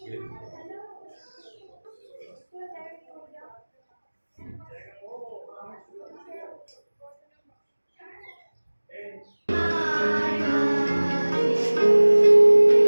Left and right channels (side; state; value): both; inverted; correlation -1.00